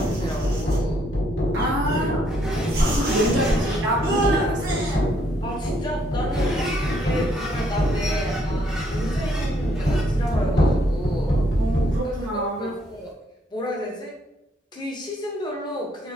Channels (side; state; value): both; normal; correlation 0.70